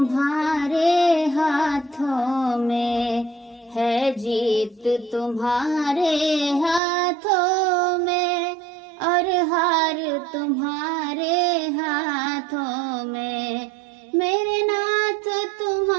हाथों में है, जीत तुम्हारे हाथों में और हार तुम्हारे हाथों में। मेरे नाथ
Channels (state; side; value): drops out; left; at 6.8 s